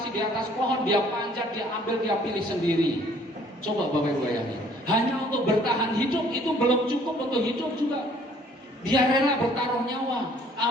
di atas pohon, dia panjat, dia ambil, dia pilih sendiri. Coba Bapak Ibu bayangin, hanya untuk bertahan hidup itu belum cukup untuk hidup juga. Dia rela bertaruh nyawa,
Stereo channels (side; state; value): both; normal; correlation 0.58